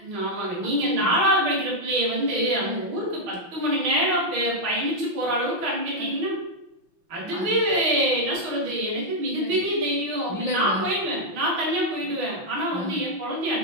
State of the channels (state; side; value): late; left; 5.9 ms